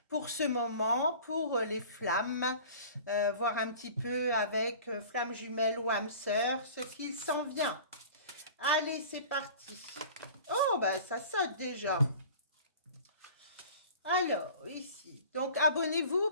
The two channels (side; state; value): both; inverted; correlation -0.42